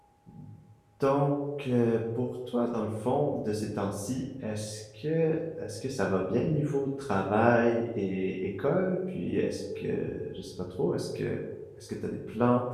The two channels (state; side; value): identical; both; correlation 1.00